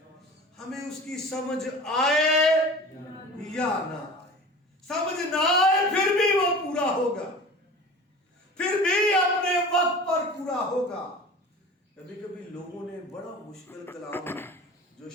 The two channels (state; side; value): normal; both; correlation 0.38